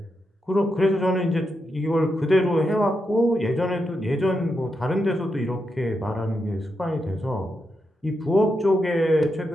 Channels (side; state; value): both; normal; correlation 0.85